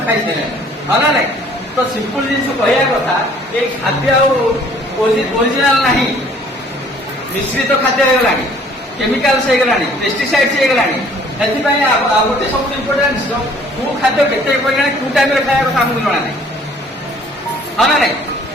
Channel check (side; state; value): both; normal; correlation 0.56